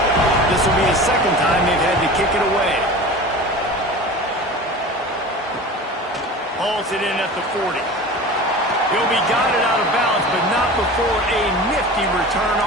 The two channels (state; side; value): normal; both; correlation 0.35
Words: This will be the second time they've had to kick it away. Hauls it in at the 40. He'll be guided out of bounds, but not before a nifty return